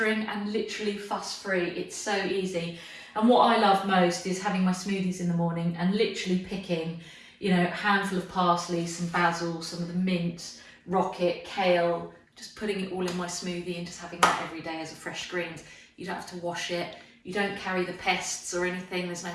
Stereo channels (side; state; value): both; identical; correlation 1.00